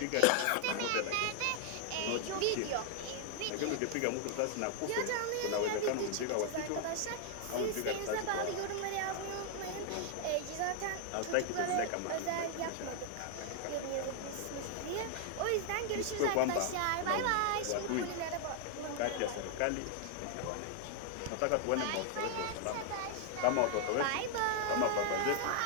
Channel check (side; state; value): both; different; correlation 0.00